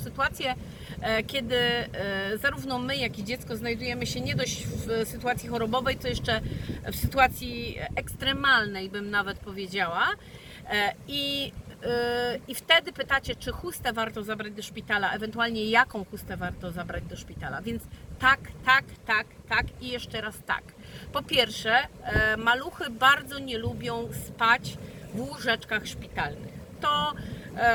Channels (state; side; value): identical; both; correlation 1.00